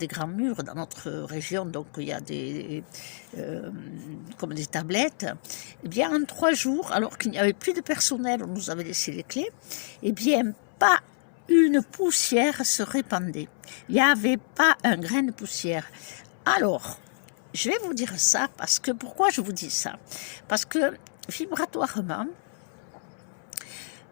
grands murs dans notre région, donc il y a comme des tablettes, eh bien en 3 jours, alors qu'il n'y avait plus de personnel, on nous avait laissé les clés, eh bien pas une poussière se répandait. Il n'y avait pas un grain de poussière. Alors, je vais vous dire ça parce que, pourquoi je vous dis ça? Parce que vibratoirement,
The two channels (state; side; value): silent; right; 60 dB below the other